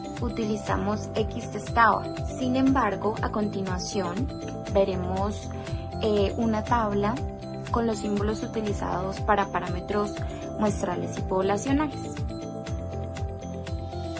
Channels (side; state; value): both; identical; correlation 1.00